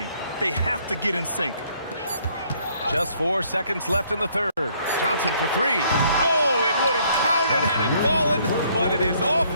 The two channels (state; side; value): inverted; both; correlation -0.65